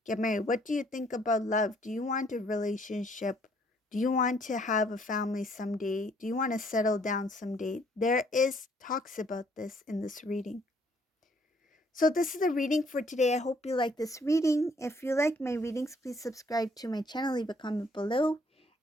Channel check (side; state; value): both; normal; correlation 0.65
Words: get married? What do you think about love? Do you want a relationship? Do you want to have a family someday? Do you want to settle down someday? There is talks about this in this reading. So this is the reading for today. I hope you like this reading. If you like my readings, please subscribe to my channel, leave a comment below.